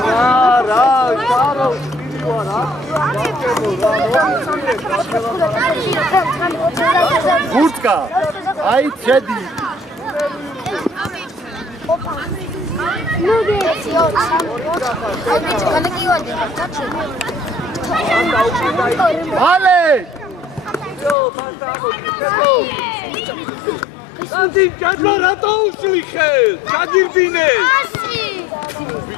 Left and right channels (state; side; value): drops out; right; at 21.2 s